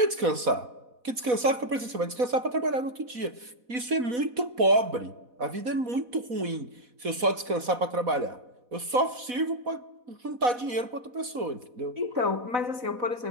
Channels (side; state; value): left; late; 4.1 ms